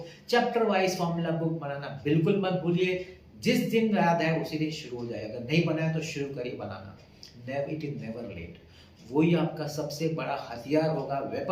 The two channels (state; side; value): identical; both; correlation 1.00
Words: Chapter wise formula book बनाना बिल्कुल मत भूलिए। जिस दिन याद है उसी दिन शुरू हो जाए, अगर नहीं बनाया तो शुरू करिए बनाना। It is never late. वही आपका सबसे बड़ा हथियार होगा,